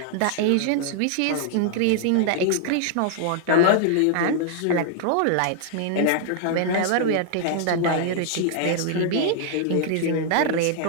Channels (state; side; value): different; both; correlation 0.00